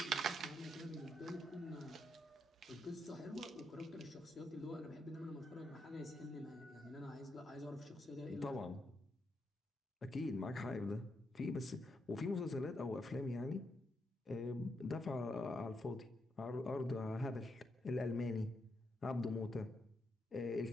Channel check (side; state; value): both; normal; correlation 0.81